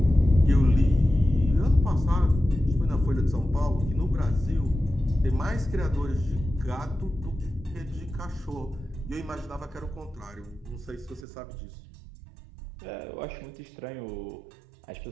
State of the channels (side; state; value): left; drops out; at 11.2 s